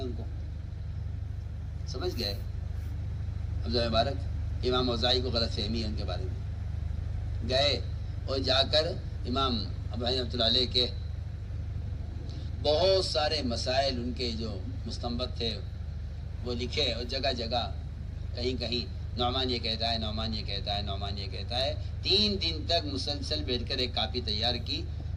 ان کو. سمجھ گئے عبداللہ مبارک امام اوزاعی کو غلط فہمی ہے ان کے بارے میں. گئے اور جا کر امام ابو حنیفہ رحمۃ اللہ علیہ کے بہت سارے مسائل ان کے جو مستنبط تھے وہ لکھے، اور جگہ جگہ کہیں کہیں نعمان یہ کہتا ہے، نعمان یہ کہتا ہے، نعمان یہ کہتا ہے. 3 دن تک مسلسل بیٹھ کر ایک کاپی تیار کی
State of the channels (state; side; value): identical; both; correlation 1.00